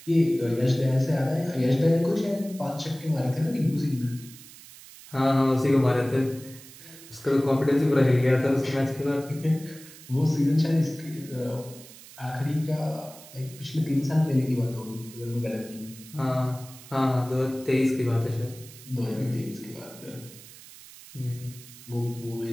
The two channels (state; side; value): noise; right; hiss, 19 dB below the sound